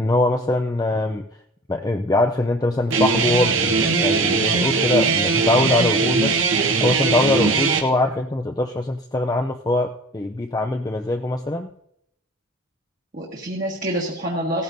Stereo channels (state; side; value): normal; both; correlation 0.42